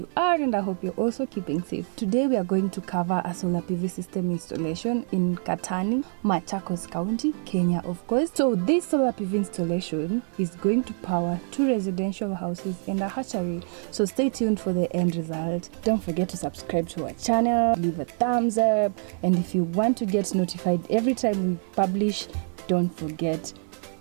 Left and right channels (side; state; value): left; silent; 56 dB below the other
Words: are, and I hope you're also keeping safe. Today we are going to cover a solar PV system installation in Katani, Machakos County, Kenya of course. So this solar PV installation is going to power 2 residential houses and a hatchery. So stay tuned for the end result. Don't forget to subscribe to our channel, leave a thumbs up, and if you want to get notified every time we publish, don't forget